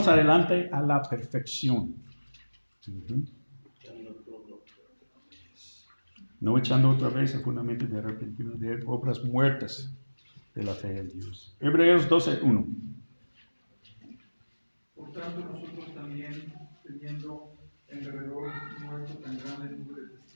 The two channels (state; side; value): inverted; both; correlation -1.00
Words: adelante a la perfección. No echando otra vez el fundamento de arrepentimiento de obras muertas de la fe en Dios. Hebreos 12.1. Por tanto, nosotros también, teniendo en derredor nuestro tan grande número de